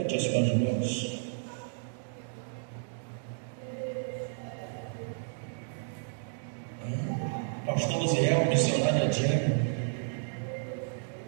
as suas mãos. Pastor Luziel, missionária Diana.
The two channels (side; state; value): left; silent; digital silence